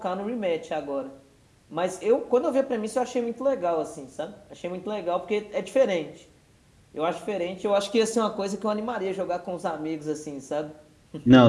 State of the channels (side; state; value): both; identical; correlation 1.00